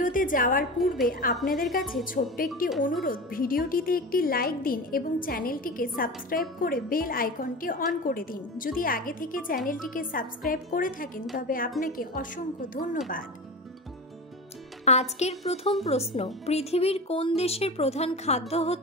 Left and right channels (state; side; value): normal; both; correlation 0.28